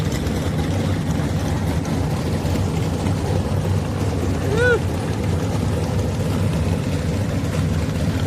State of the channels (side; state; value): both; identical; correlation 1.00